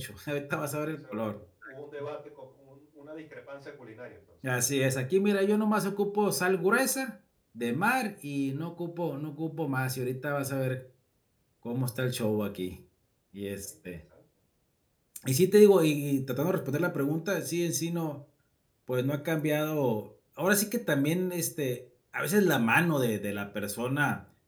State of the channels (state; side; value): identical; both; correlation 1.00